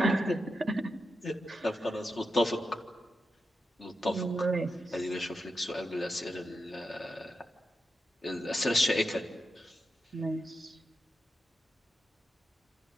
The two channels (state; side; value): normal; both; correlation 0.88